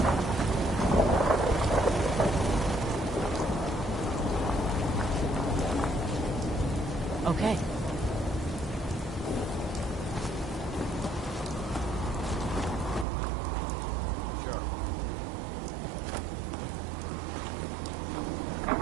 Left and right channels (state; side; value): drops out; left; at 13.1 s